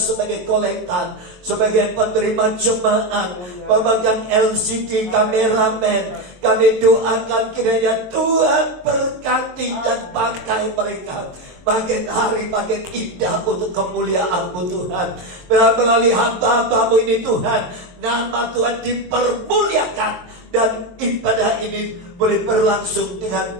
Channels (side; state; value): left; late; 22 ms